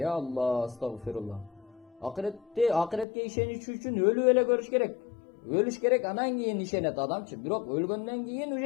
Алла, астагфирулла. Акыретке ишениш үчүн өлүп эле көрүш керек. Өлүш керек, анан кийин ишенет адамчы. Бирок өлгөндөн кийин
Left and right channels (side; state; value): right; drops out; at 3.1 s